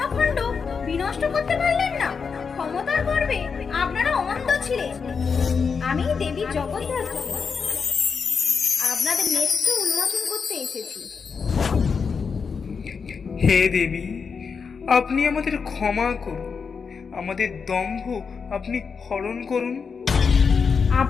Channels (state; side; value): quieter; right; 5.7 dB